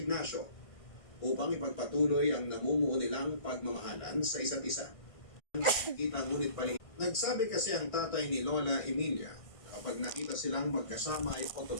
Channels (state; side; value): late; right; 1.5 ms